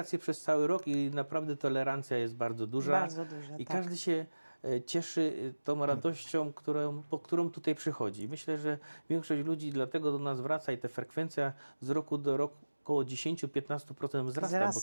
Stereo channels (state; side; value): inverted; both; correlation -1.00